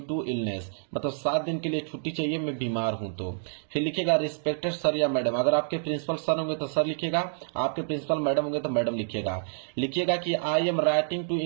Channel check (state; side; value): silent; left; digital silence